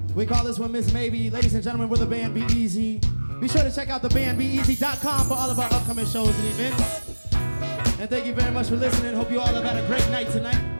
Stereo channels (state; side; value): inverted; both; correlation -1.00